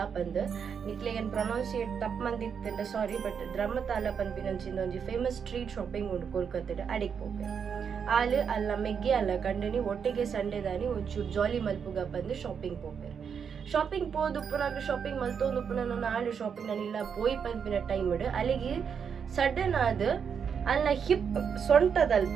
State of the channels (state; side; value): quieter; left; 6.9 dB